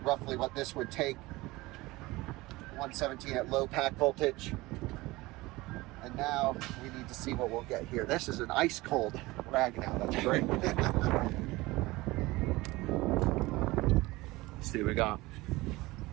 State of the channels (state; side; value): quieter; left; 20.5 dB